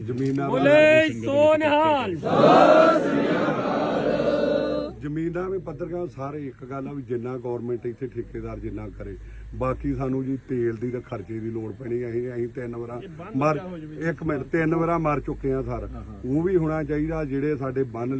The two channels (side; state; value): both; identical; correlation 1.00